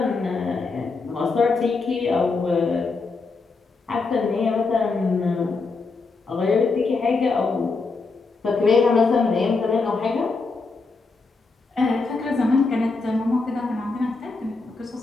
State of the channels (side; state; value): right; quieter; 4.1 dB